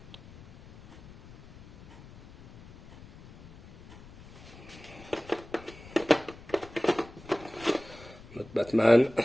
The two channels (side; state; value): left; noise; rumble, 20 dB below the sound